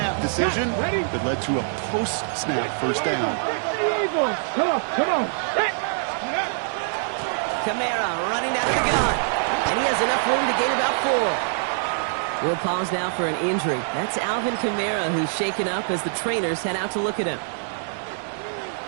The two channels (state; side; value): silent; left; digital silence